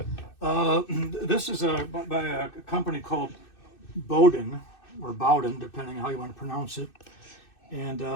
This is by a company called Bowden, or Bowden, depending how you want to pronounce it. And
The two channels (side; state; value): right; late; 2.6 ms